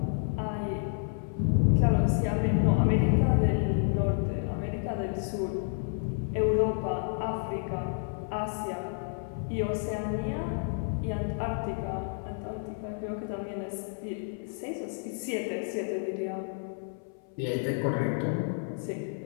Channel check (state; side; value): silent; right; 58 dB below the other